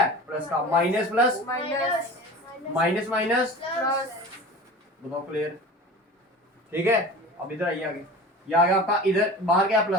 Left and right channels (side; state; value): both; normal; correlation 0.36